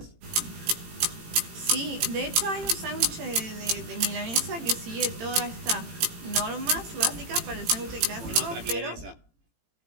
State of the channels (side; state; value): left; late; 18 ms